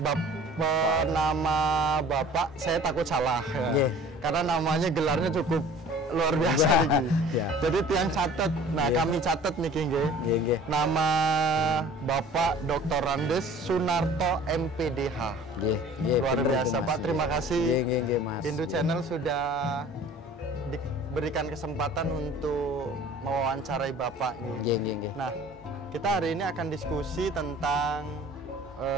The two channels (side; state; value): both; normal; correlation 0.47